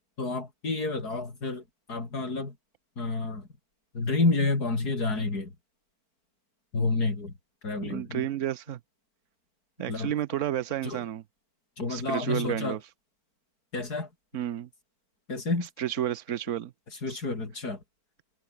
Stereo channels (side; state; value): right; late; 4.8 ms